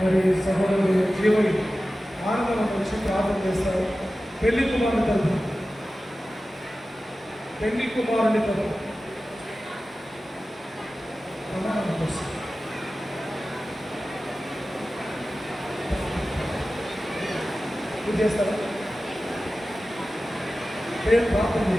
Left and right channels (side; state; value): both; normal; correlation 0.95